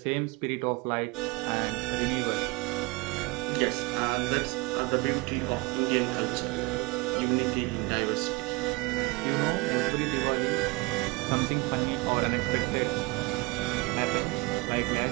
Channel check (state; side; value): quieter; left; 24.5 dB